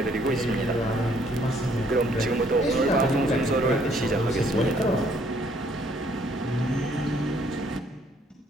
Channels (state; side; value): normal; both; correlation 0.65